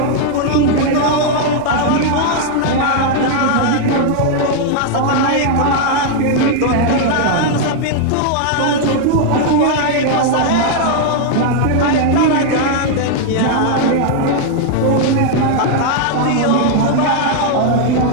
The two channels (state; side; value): different; both; correlation 0.00